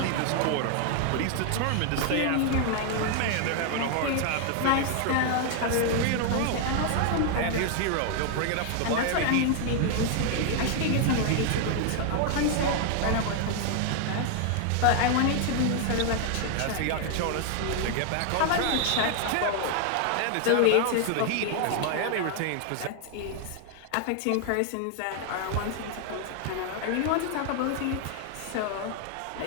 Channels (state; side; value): different; both; correlation 0.00